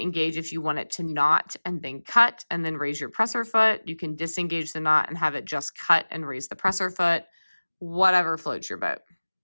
if you want it to knot and then cut and then raise your presser foot. You can disengage the knot and have it just cut and raise the presser foot, whatever floats your boat.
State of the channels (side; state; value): both; inverted; correlation -1.00